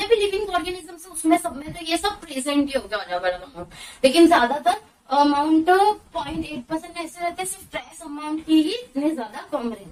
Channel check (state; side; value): identical; both; correlation 1.00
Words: भी living organisms है उसमें सब में तो ये सब प्रेजेंट ही हो गया अलग अलग अमाउंट, लेकिन ज्यादातर अमाउंट 0.8% ऐसे रहते हैं, सिर्फ ट्रेस अमाउंट की ही इतनी ज्यादा कम